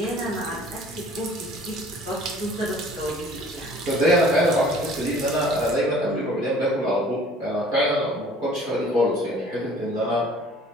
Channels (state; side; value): normal; both; correlation 0.52